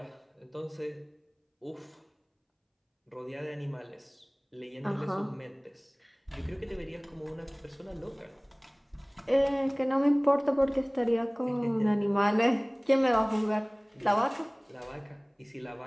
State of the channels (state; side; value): identical; both; correlation 1.00